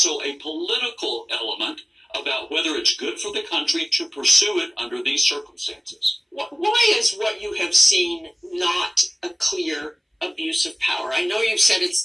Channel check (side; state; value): both; identical; correlation 1.00